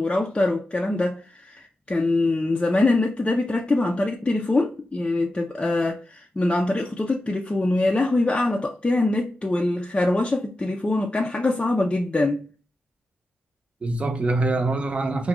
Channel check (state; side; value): normal; both; correlation 0.91